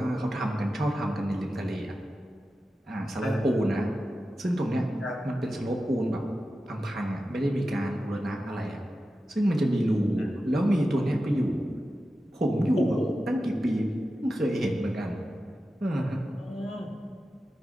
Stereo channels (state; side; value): normal; both; correlation 0.92